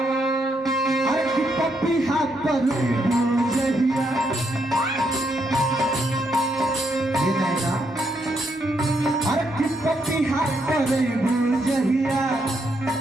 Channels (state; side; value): normal; both; correlation 0.77